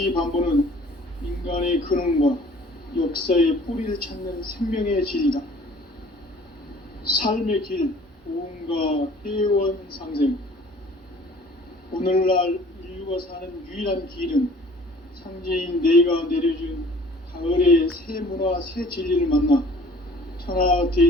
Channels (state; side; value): normal; both; correlation 0.51